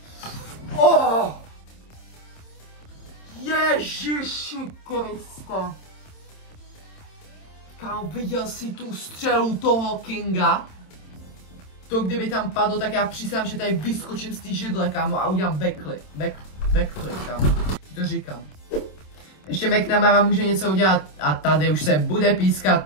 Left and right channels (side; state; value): right; late; 27 ms